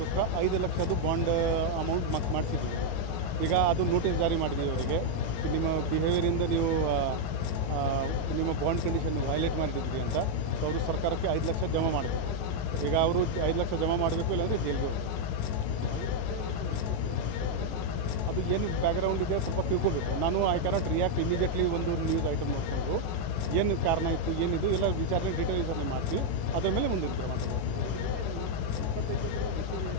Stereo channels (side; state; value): right; late; 18 ms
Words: 5 ಲಕ್ಷದ್ದು ಬಾಂಡ್ ಅಮೌಂಟ್ ಮಾಡಿಸಿದ್ದೀವಿ. ಈಗ ಅದು ನೋಟಿಸ್ ಜಾರಿ ಮಾಡಿದ್ದೀವಿ ಅವರಿಗೆ. ನಿಮ್ಮ ಬಿಹೇವಿಯರಿಂದ ನೀವು ನಿಮ್ಮ ಬಾಂಡ್ ಕಂಡೀಷನ್ ವೈಲೇಟ್ ಮಾಡಿದ್ರಿ ಅಂತ. ಸೊ ಅವರು ಸರ್ಕಾರಕ್ಕೆ 5 ಲಕ್ಷ ಜಮಾ ಮಾಡಬೇಕು. ಈಗ ಅವರು 5 ಲಕ್ಷ ಜಮಾ ಮಾಡಬೇಕು, ಇಲ್ಲಾಂದರೆ ಜೈಲಿಗೆ ಹೋಗಬೇಕು. ಅದು ಏನು ಬ್ಯಾಕ್ಗ್ರೌಂಡ್ ಇದೆ ಸ್ವಲ್ಪ ತಿಳ್ಕೊಬೇಕು. ನಾನು ಐ ಕ್ಯಾನಾಟ್ ರಿಯಾಕ್ಟ್ ಇಮಿಡಿಯೇಟ್ಲಿ. ಒಂದು ನ್ಯೂಸ್ ಐಟಮ್ ನೋಡಿಕೊಂಡ್ರು ಏನು ಕಾರಣ ಇತ್ತು, ಏನಿದು ಎಲ್ಲ ವಿಚಾರಣೆ ಡೀಟೇಲ್ ವಿಚಾರಣೆ ಮಾಡ್ತೀವಿ. ಅದರ ಮೇಲೆ ಮುಂದಿನ ಕ್ರಮ ತಗೋತೀವಿ.